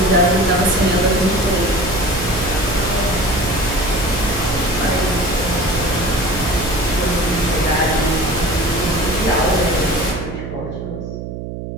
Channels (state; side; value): noise; right; hum, 8 dB below the sound